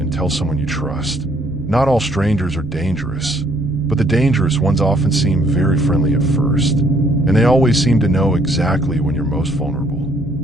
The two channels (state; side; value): normal; both; correlation 0.65